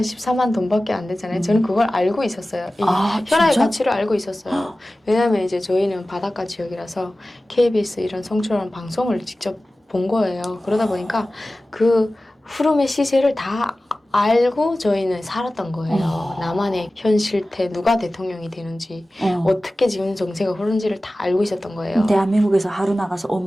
돈밖에 안 되잖아요. 저는 그걸 알고 있었어요. 이 현아의 가치를 알고 있었어요. 왜냐하면 이제 저희는 바닷가 지역이라서 KBS 이런 성출하는 방송을 직접 본 거예요. 그러다 보니까 그 흐름의 시세를 다 알고 저희는 살았던 거예요. 나만의 현 실태, 누가 대통령이 되는지, 어떻게 지금 정세가 흐르는지를 다 알고 있었던 거예요. 대한민국에서 하루 나가서 온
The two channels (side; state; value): both; normal; correlation 0.96